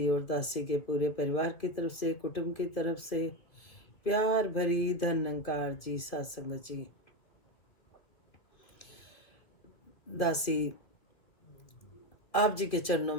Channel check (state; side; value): late; right; 2.7 ms